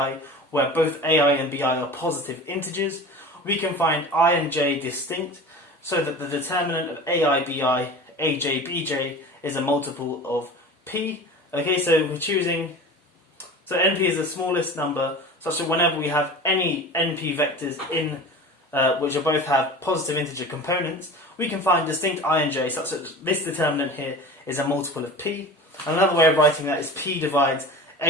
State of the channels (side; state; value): both; normal; correlation 0.36